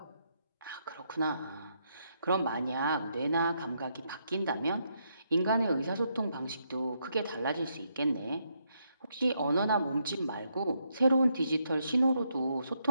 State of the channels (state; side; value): inverted; both; correlation -0.77